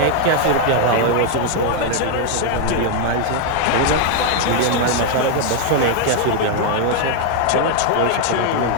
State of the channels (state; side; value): different; both; correlation 0.00